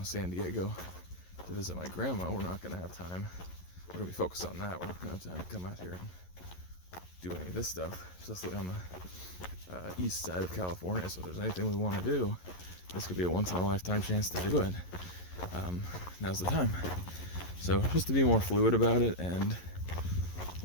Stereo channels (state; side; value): late; right; 11 ms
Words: San Diego to visit my grandma, we're not going to have time. We're going to be focused on that. We're not going to have time to come out here and do any of this stuff, especially on the east side of California. So if there's anything we want to do, this could be a once-in-a-lifetime chance to do it. Now's the time. So just to be more fluid about it and